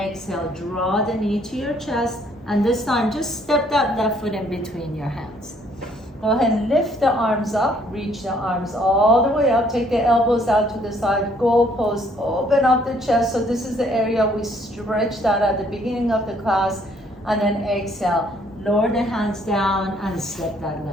draw the knee to your chest. And this time, just step that left foot in between your hands. Go ahead and lift the arms up, reach the arms all the way up, take the elbows out to the side, goalpost, open up the chest. So this is the area we stretched out at the beginning of the class. And then exhale, lower the hands down and step that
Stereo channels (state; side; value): normal; both; correlation 0.64